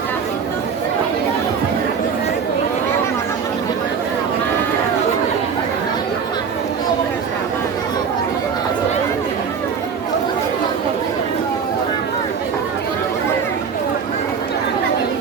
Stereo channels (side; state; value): left; quieter; 6.4 dB